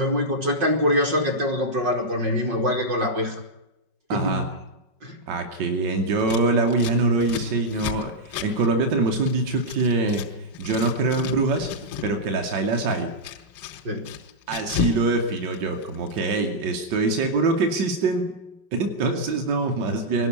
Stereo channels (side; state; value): left; late; 5.3 ms